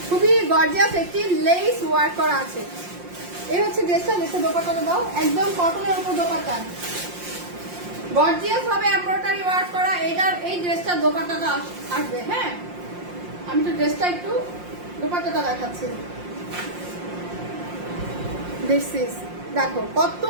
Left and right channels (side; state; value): left; late; 5.6 ms